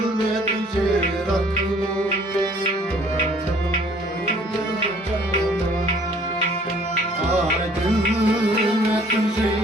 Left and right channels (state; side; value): normal; both; correlation 0.57